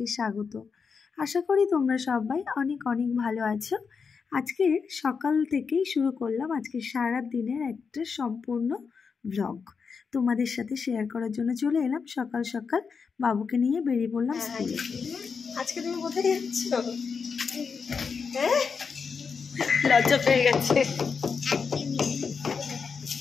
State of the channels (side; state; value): right; quieter; 5.6 dB